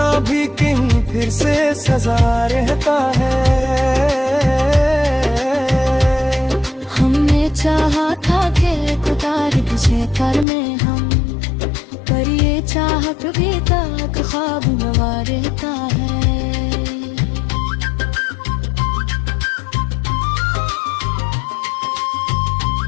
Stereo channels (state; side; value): drops out; right; at 10.5 s